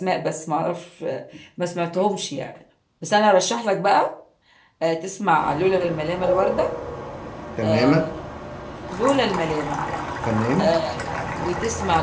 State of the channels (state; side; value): identical; both; correlation 1.00